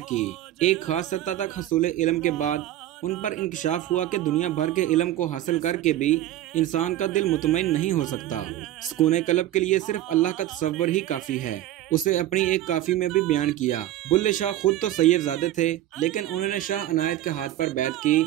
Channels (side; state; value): left; quieter; 13.5 dB